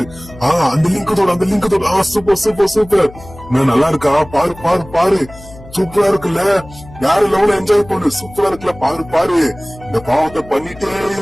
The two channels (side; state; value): left; noise; hum, 19 dB below the sound